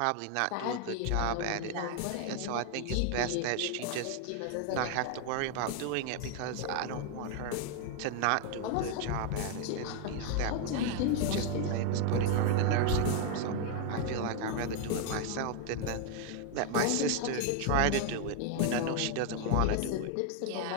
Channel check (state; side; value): different; both; correlation 0.00